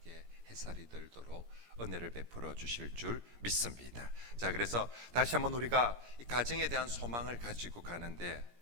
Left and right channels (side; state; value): left; late; 17 ms